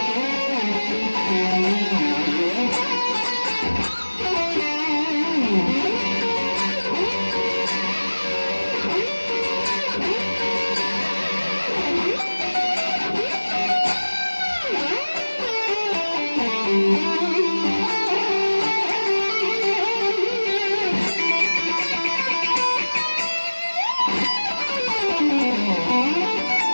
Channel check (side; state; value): both; inverted; correlation -1.00